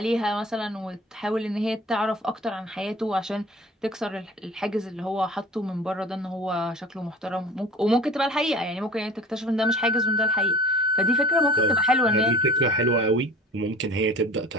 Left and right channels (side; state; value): both; normal; correlation 0.42